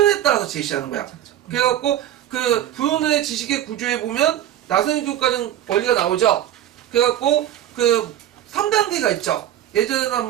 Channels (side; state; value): left; quieter; 11.8 dB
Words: 따라서 제시하는 거야. 그래갖고 그 부연의 지식의 구조에 보면 나선형 교육과정 원리가 나오죠. 그래갖고 그 3단계가 있죠. 예전에는